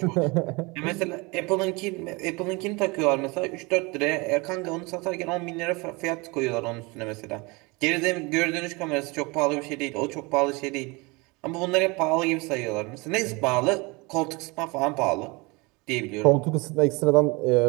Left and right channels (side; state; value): left; quieter; 26.6 dB